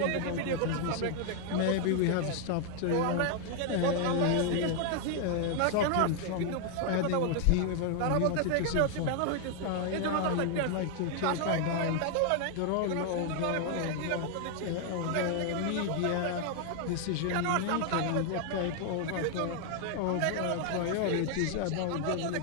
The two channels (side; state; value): both; different; correlation 0.00